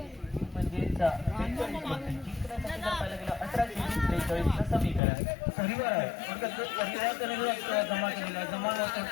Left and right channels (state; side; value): drops out; right; at 5.0 s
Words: म्हणजेच पाहायला गेलं 18-43 समीकरण परिवार आहे. जमा केलेला जमा